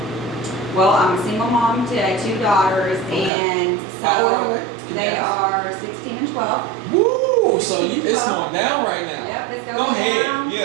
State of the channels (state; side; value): drops out; left; at 3.3 s